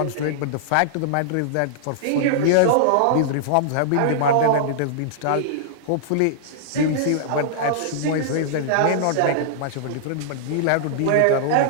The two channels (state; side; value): different; both; correlation -0.01